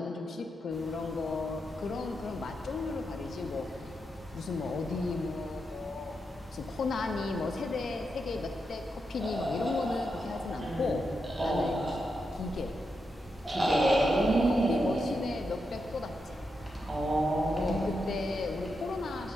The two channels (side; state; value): both; normal; correlation 0.85